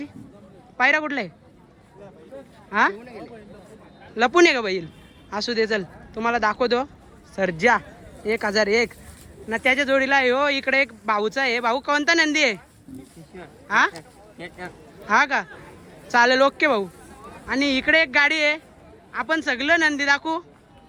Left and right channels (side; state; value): both; identical; correlation 1.00